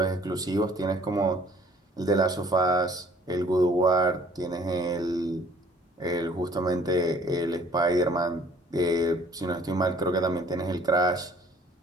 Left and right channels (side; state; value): both; normal; correlation 0.56